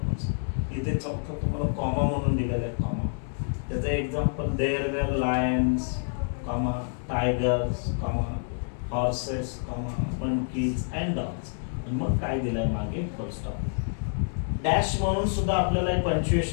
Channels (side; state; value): right; silent; digital silence